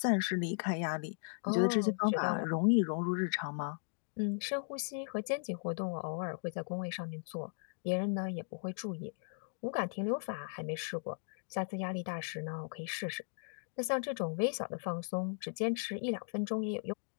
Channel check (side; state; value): right; silent; digital silence